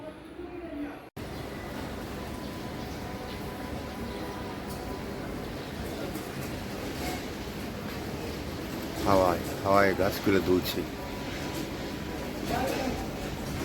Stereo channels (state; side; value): identical; both; correlation 1.00